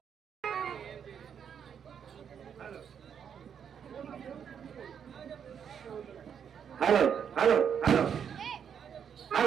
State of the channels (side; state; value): left; quieter; 7.8 dB